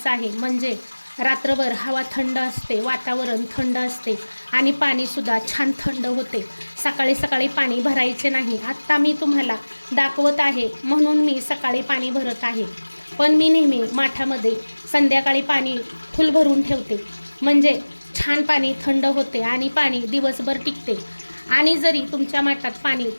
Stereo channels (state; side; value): inverted; both; correlation -1.00